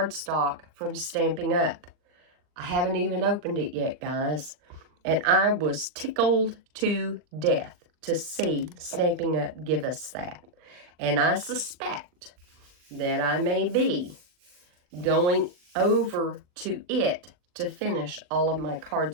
from Stampin' Up. I haven't even opened it yet, guys. And I was tickled to death to see Stampin' Up give us that. And I suspect that I may be going over to it to finish all of my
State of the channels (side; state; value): left; late; 39 ms